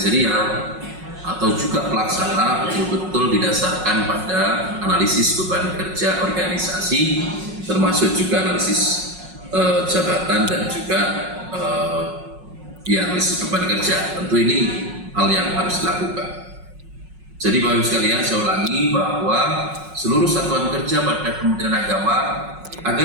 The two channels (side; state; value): left; late; 5.4 ms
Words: atau juga pelaksana, betul-betul didasarkan pada analisis beban kerja organisasi, termasuk juga analisis jabatan dan juga analisis beban kerja. Tentu ini hal yang harus dilakukan. Jadi Bapak Ibu sekalian, saya ulangi bahwa seluruh satuan kerja pada Kementerian Agama